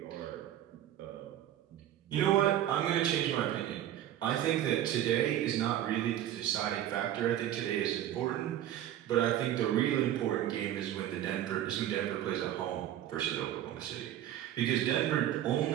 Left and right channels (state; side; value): quieter; left; 12.0 dB